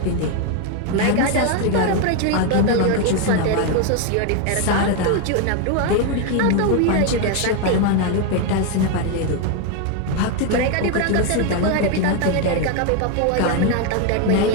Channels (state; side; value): different; both; correlation 0.01